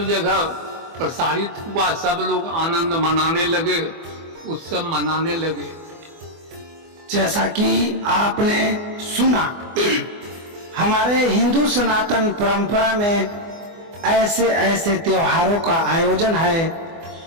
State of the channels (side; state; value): left; late; 24 ms